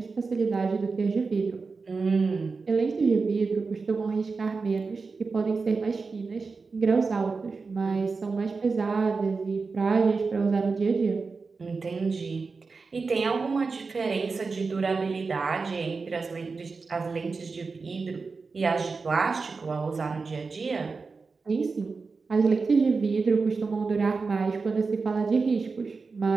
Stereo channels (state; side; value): quieter; left; 4.4 dB